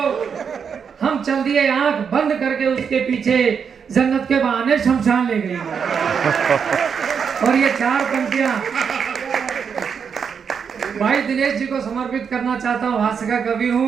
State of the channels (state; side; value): quieter; left; 6.7 dB